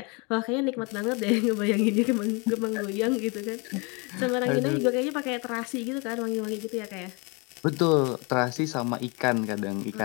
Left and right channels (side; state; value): right; quieter; 30.4 dB